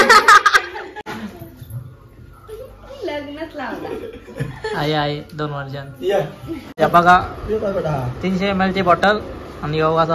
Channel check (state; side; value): identical; both; correlation 1.00